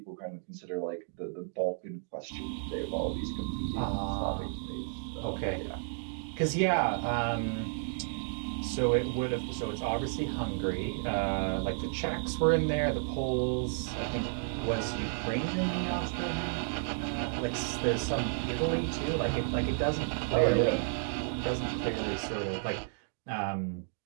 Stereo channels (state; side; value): silent; left; digital silence